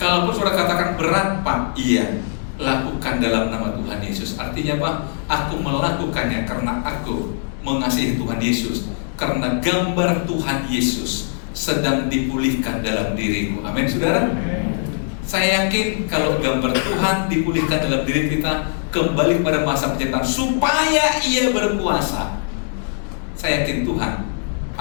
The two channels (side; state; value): right; silent; 65 dB below the other